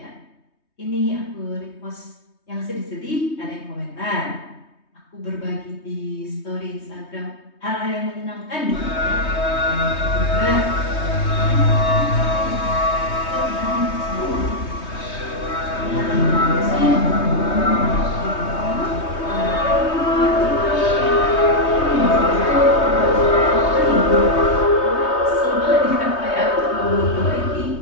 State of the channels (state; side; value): late; right; 3.2 ms